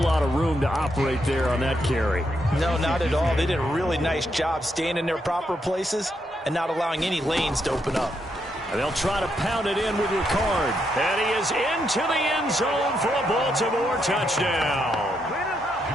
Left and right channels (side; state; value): both; normal; correlation 0.79